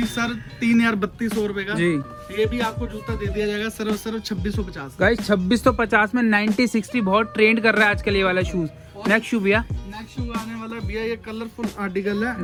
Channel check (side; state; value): both; identical; correlation 1.00